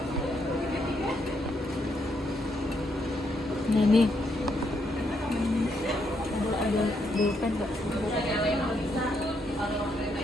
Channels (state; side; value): normal; both; correlation 0.77